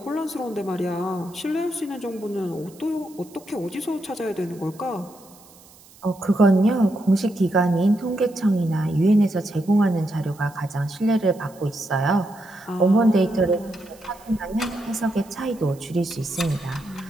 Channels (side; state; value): right; noise; hiss, 25 dB below the sound